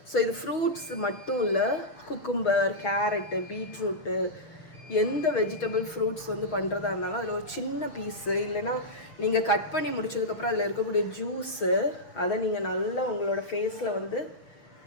ஸோ இது ஃப்ரூட்ஸ் மட்டும் இல்லை, குக்கும்பர், கேரட்டு, பீட்ரூட்டு, எந்த வெஜிடபிள் ஃப்ரூட்ஸ் வந்து பண்ணுறதா இருந்தாலும் அதில் ஒரு சின்ன பீஸு, இல்லைன்னா நீங்கள் கட் பண்ணி முடிச்சதுக்கப்புறம் அதில் இருக்கக்கூடிய ஜூஸு, அதை நீங்கள் நல்லா உங்களோட ஃபேஸில் வந்து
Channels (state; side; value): late; right; 6.5 ms